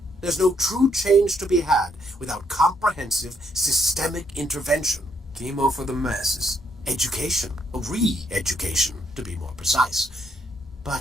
There's no true change to be had without comprehensive, systemic intervention. Chemo for the masses. Education, re-education, to be more precise.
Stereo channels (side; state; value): both; normal; correlation 0.72